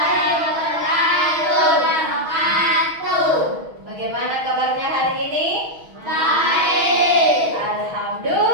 wabarakatuh. Bagaimana kabarnya hari ini? Baik.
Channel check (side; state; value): left; late; 6.3 ms